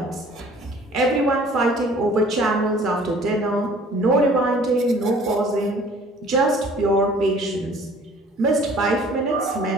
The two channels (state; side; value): normal; both; correlation 0.52